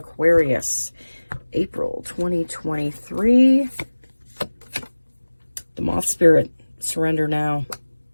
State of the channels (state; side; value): inverted; both; correlation -1.00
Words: April 2023. The Moth Spirit. Surrender now.